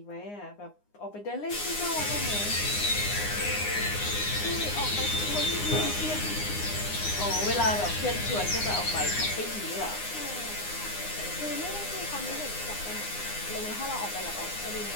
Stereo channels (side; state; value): right; late; 9.7 ms